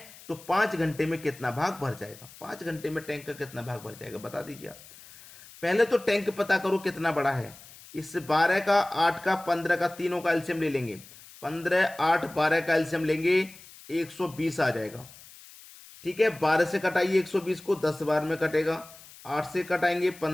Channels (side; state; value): left; noise; hiss, 20 dB below the sound